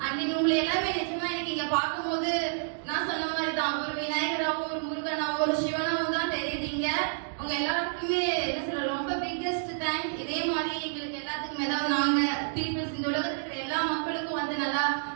அண்ட் உங்களை எல்லாமே நிஜமா எனக்கு இங்க பார்க்கும்போது நான் சொன்ன மாதிரி தான் ஒரு விநாயகராவும், ஒரு முருகனாவும், ஒரு சிவனாவும் தான் தெரியுறீங்க. உங்க எல்லாருக்குமே என்ன சொல்ற ரொம்ப பிக்கெஸ்ட் தேங்க்ஸ். இதே மாதிரி எங்களுக்கு எல்லாத்துக்குமே ஏதாவது நாங்க பீப்புள்ஸ் இந்த உலகத்துல இருக்கிற எல்லா மக்களுக்கும் வந்து நல்லா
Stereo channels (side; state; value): left; silent; digital silence